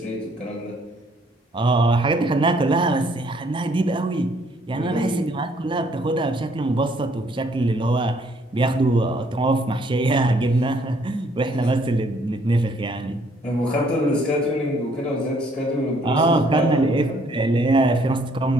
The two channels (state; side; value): normal; both; correlation 0.65